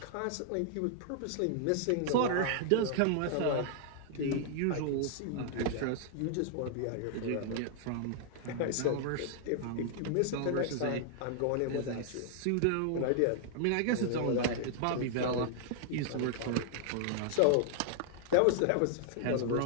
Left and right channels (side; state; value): both; different; correlation -0.01